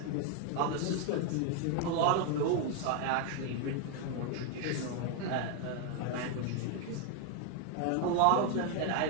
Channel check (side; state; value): both; different; correlation 0.01